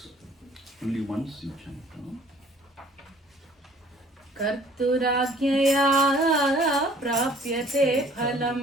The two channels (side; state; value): both; normal; correlation 0.55